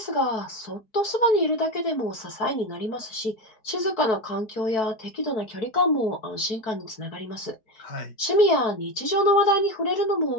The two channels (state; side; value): late; right; 4.6 ms